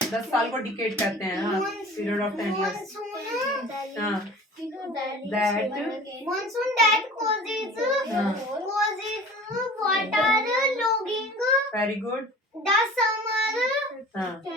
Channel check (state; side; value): normal; both; correlation 0.42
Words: 10 साल को डिकेड कहते हैं, हाँ पीरियड ऑफ 10 इयर्स, हाँ that Monsoon that causes water logging. Very good, The summer हाँ the